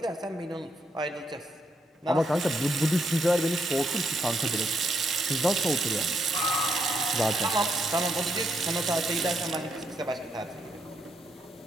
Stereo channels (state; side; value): normal; both; correlation 0.77